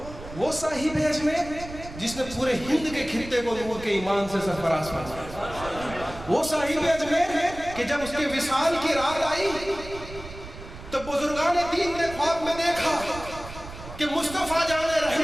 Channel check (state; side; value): noise; right; rumble, 13 dB below the sound